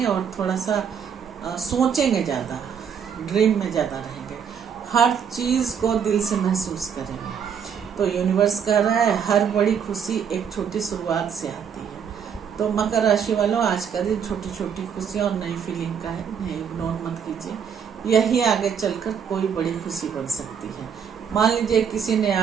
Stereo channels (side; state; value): left; quieter; 7.4 dB